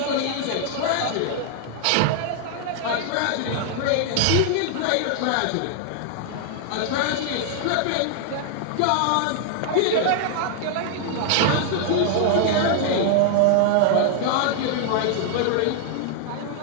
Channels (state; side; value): different; both; correlation 0.00